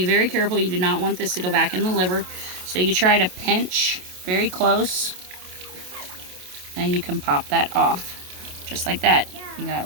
very careful. You do not want this to go back in the liver. So you try to pinch very close. And you can pop that off. Just like that. You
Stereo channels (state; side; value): late; left; 27 ms